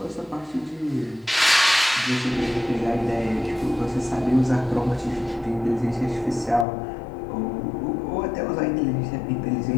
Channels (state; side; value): drops out; right; at 6.7 s